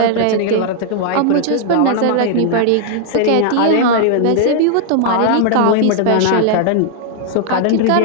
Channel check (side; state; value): both; different; correlation -0.01